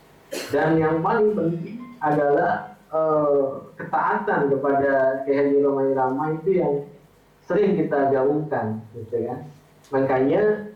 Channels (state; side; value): identical; both; correlation 1.00